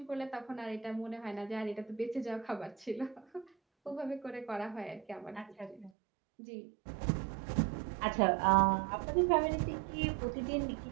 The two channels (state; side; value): drops out; left; at 5.9 s